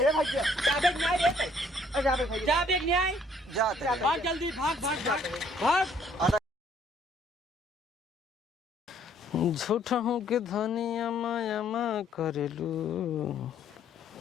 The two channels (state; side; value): normal; both; correlation 0.63